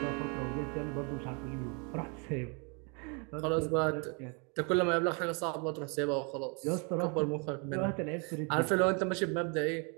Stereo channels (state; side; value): quieter; left; 34.7 dB